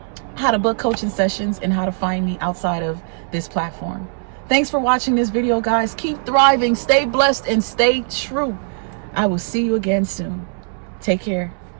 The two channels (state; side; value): silent; left; 66 dB below the other